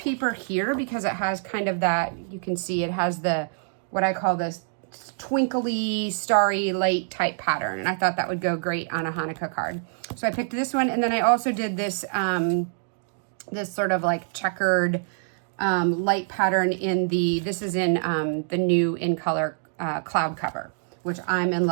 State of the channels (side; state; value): left; silent; digital silence